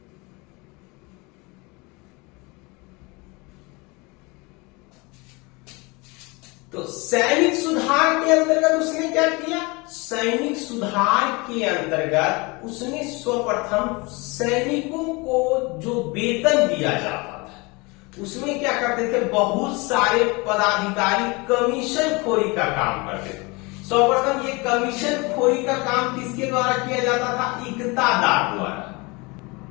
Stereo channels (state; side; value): quieter; right; 26.4 dB